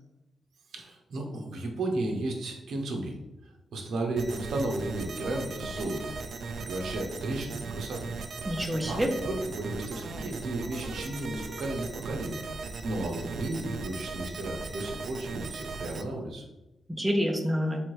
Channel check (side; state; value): both; normal; correlation 0.86